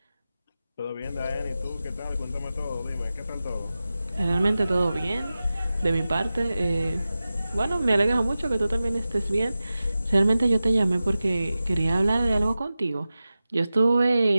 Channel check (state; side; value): inverted; both; correlation -0.95